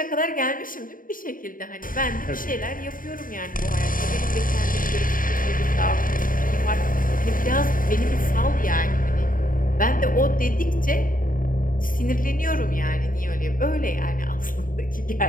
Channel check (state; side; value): late; right; 0.40 ms